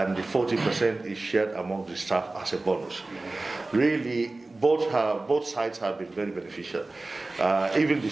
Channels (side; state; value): left; quieter; 3.1 dB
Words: the 40% is shared among the staff as a bonus. Really, both sides have been very beneficial. Even the